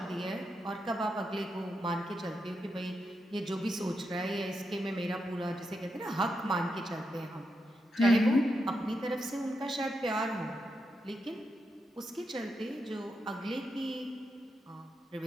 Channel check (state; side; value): normal; both; correlation 0.85